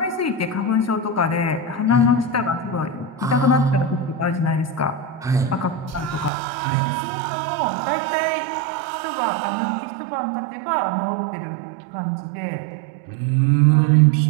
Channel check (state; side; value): drops out; left; at 6.3 s